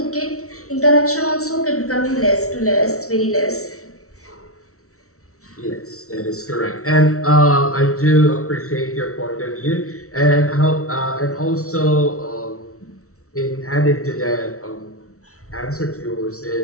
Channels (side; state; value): right; late; 0.64 ms